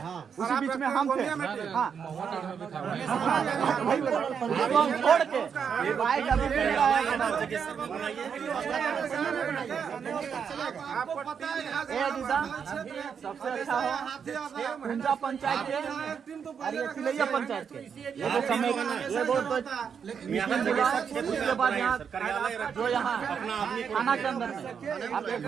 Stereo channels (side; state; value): left; quieter; 7.0 dB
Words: उसी बीच में हम थे। छोड़ के बाइक सबसे अच्छा हो कुंजा पंचायत के तिलैया पंचायत के ये समय ये बहुत उसके बाद यहाँ जो यहाँ थाना के अंदर में आप एक